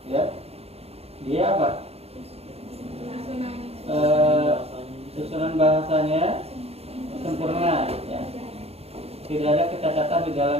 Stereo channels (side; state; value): left; late; 0.29 ms